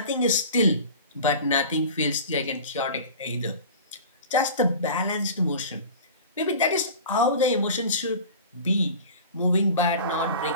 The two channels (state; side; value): inverted; both; correlation -0.38